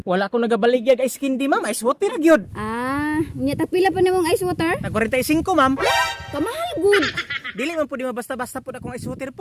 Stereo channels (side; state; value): both; identical; correlation 1.00